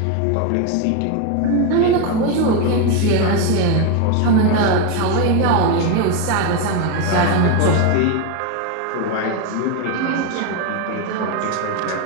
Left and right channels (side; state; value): both; different; correlation 0.02